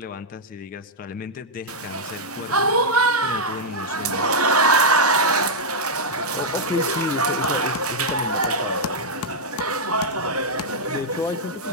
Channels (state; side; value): normal; both; correlation -0.05